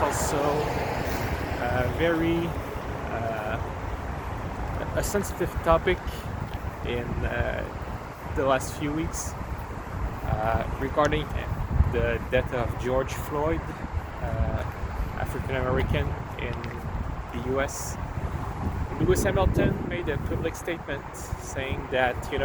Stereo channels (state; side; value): identical; both; correlation 1.00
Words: also very a sensitive topic in the last few weeks regarding the death of George Floyd, African American in the US. Lewis Hamilton made a public statement saying that